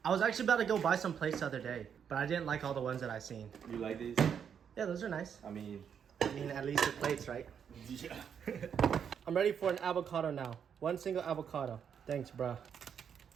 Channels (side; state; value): left; quieter; 7.7 dB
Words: I was actually about to go buy some plates the other day, but I didn't like all the ones that I seen. You like these? Yeah, those are nice. I mean, at least the plates, right? yeah. I'm ready for an avocado now. One single avocado. Thanks, bro.